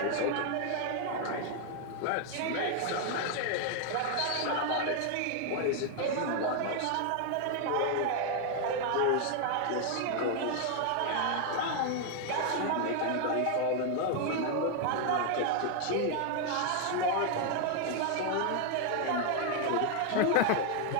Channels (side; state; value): both; different; correlation 0.00